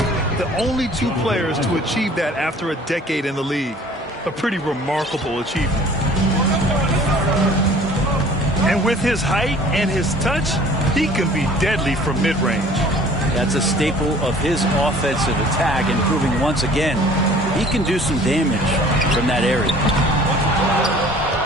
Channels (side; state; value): both; normal; correlation 0.50